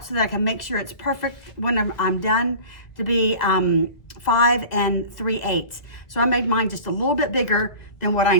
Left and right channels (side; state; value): right; late; 1.7 ms